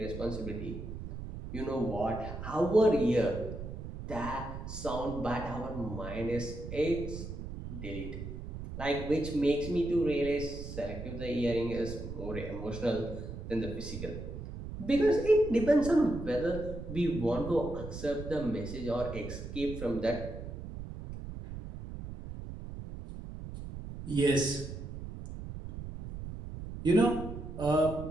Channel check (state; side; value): noise; right; rumble, 9 dB below the sound